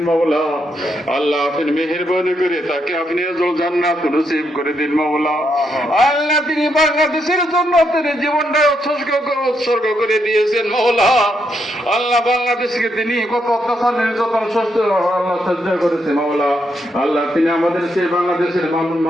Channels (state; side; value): normal; both; correlation 0.79